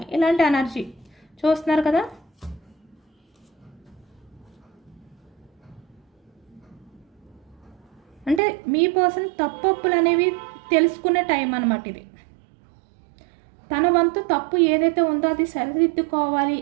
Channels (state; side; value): drops out; left; at 8.4 s